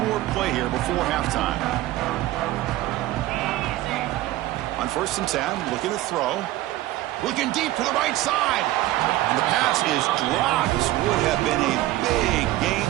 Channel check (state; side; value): quieter; left; 16.0 dB